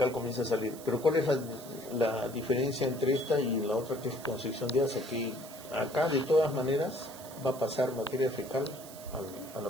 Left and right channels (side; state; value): right; noise; hiss, 17 dB below the sound